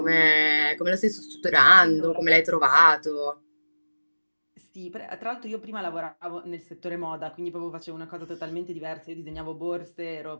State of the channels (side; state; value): both; inverted; correlation -1.00